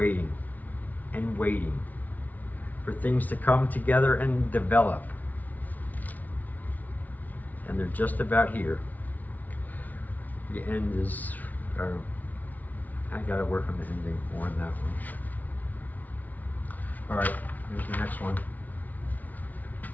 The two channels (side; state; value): right; late; 0.077 ms